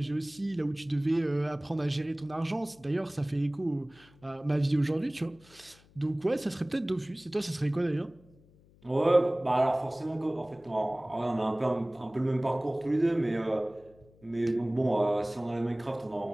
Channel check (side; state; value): left; noise; hum, 28 dB below the sound